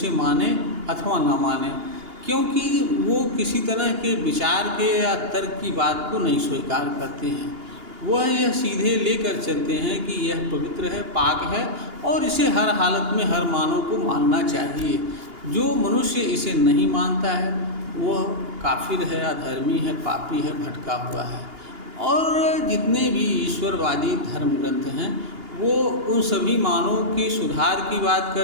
माने अथवा ना माने, क्योंकि वो किसी तरह के विचार के या तर्क की बात को नहीं स्वीकार करते हैं। वह यह सीधे लेकर चलते हैं कि यह पवित्र है, पाक है और इसे हर हालत में हर मानव को मानना चाहिए। जो मनुष्य इसे नहीं मानता है वह काफिर है, अधर्मी है, पापी है, भटका हुआ है। और जितने भी ईश्वरवादी धर्म ग्रंथ हैं वो उन सभी मानवों के सुधार की बात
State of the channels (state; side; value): late; left; 2.8 ms